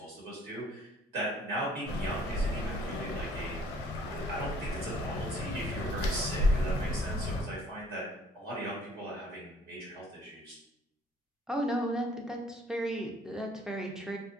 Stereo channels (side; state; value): both; normal; correlation 0.58